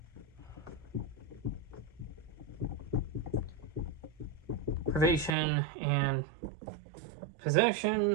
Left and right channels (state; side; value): drops out; left; at 5.4 s